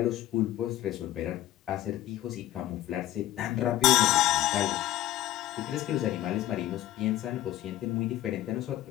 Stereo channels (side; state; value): right; quieter; 14.2 dB